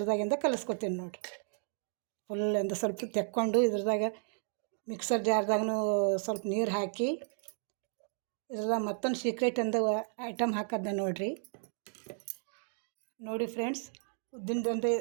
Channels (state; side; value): silent; left; digital silence